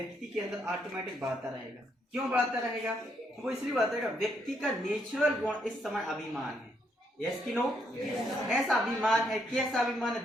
के अंदर ऑटोमेटिक बढ़ता रहेगा। क्यों बढ़ता रहेगा? वो इसलिए बढ़ता रहेगा, व्यक्ति का नेचुरल गुण इस समय अभिमान है। यस की नो? ऐसा अभिमान है, कैसा अभिमान है?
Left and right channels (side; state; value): both; normal; correlation 0.75